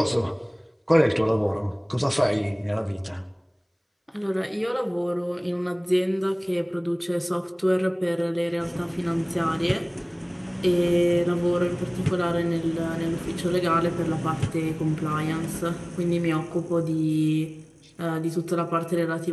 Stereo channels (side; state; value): both; identical; correlation 1.00